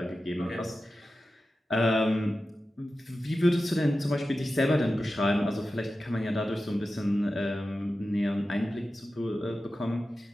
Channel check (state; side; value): normal; both; correlation 0.93